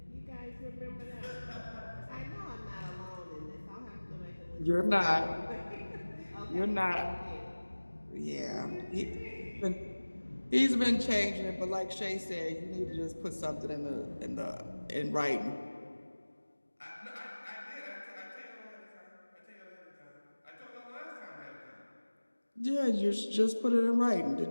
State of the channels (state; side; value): inverted; both; correlation -1.00